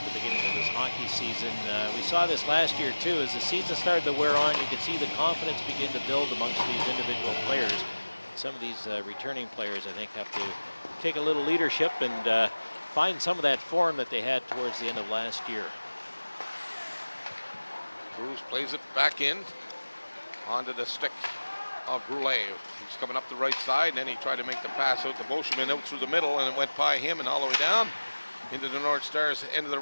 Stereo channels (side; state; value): both; inverted; correlation -1.00